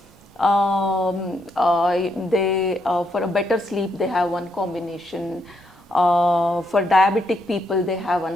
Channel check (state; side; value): normal; both; correlation 0.77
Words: For a better sleep they have one combination. For diabetic people they have